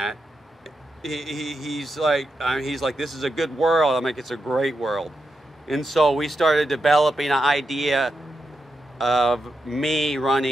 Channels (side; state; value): both; normal; correlation 0.86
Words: He's like, this is a good world. I'm like, it's a great world. And so we started developing an idea of me